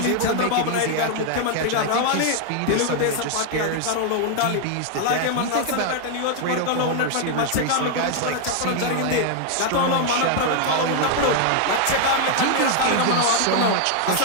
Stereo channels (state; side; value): different; both; correlation 0.00